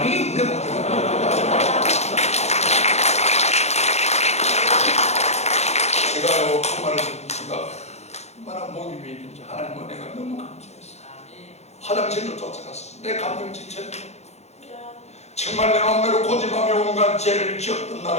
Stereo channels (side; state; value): right; late; 0.32 ms